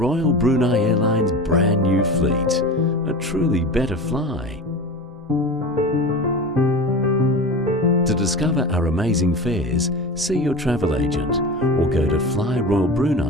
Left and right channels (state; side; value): normal; both; correlation 0.31